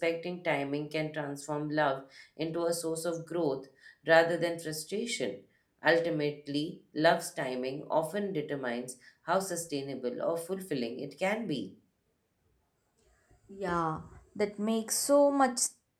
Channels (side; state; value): both; identical; correlation 1.00